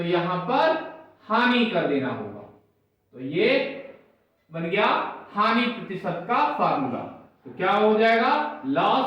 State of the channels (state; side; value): identical; both; correlation 1.00